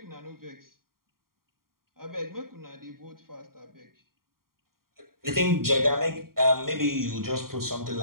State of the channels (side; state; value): left; late; 0.92 ms